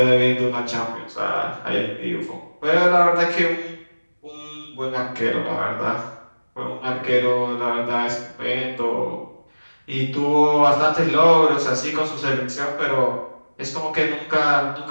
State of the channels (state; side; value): inverted; both; correlation -1.00